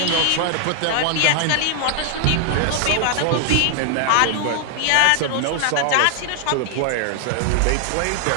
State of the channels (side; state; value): both; different; correlation 0.00